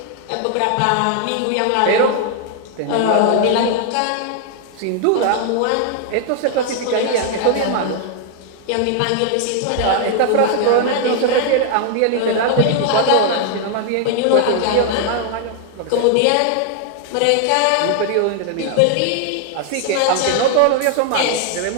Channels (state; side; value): different; both; correlation 0.00